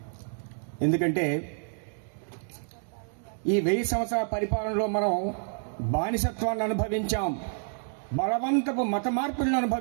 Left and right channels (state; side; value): silent; left; digital silence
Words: ఎందుకంటే ఈ 1000 సంవత్సరాల పరిపాలనలో మనం బానిసత్వాన్ని అనుభవించాం, బలవంతపు మత మార్పులను